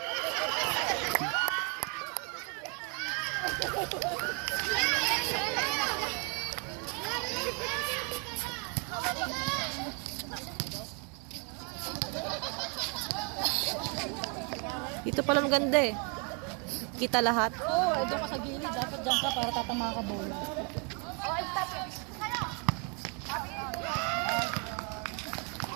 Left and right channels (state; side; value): quieter; left; 35.8 dB